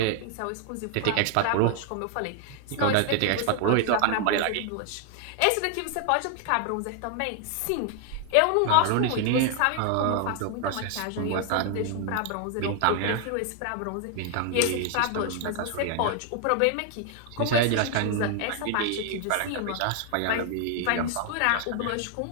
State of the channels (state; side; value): different; both; correlation 0.00